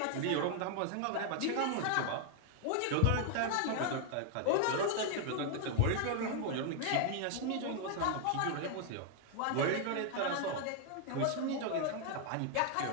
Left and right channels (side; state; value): both; different; correlation 0.00